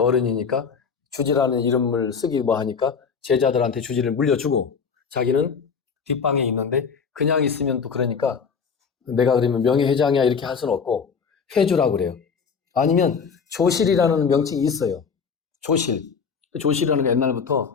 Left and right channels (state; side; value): quieter; right; 6.0 dB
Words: 주지라는 이름을 쓰기 뭐 하니까 제자들한테 주지를 물려주고 자기는 뒷방에 있는데 그냥 있으면 또 그러니까 내가 그러면 명예회장이야 이렇게 할 수는 없고 회주라고 그래요. 아니면 조실이라는 명칭이 있어요. 조실. 조실이라는 게